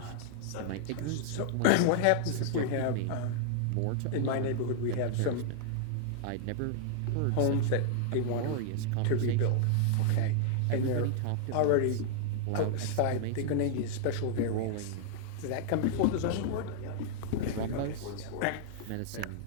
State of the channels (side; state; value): both; different; correlation -0.01